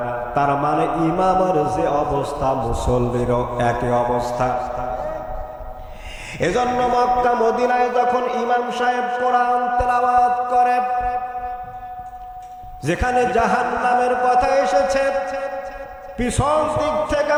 তার মানে ইমামের যে অবস্থা মুসল্লিরও একই অবস্থা। এজন্য মক্কা মদিনায় যখন ইমাম সাহেব কোরআন তেলাওয়াত করে, যেখানে জাহান্নামের কথা এসেছে, পিছন দিক থেকে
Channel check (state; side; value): identical; both; correlation 1.00